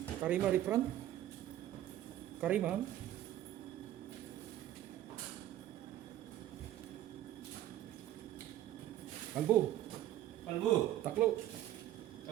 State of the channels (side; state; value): left; quieter; 12.9 dB